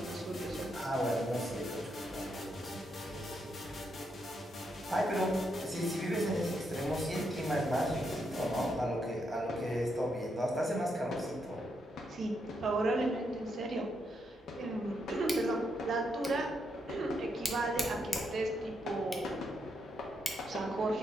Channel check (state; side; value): normal; both; correlation 0.80